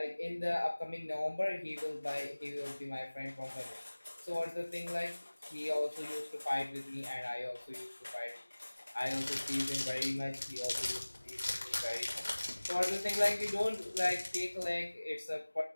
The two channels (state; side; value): inverted; both; correlation -1.00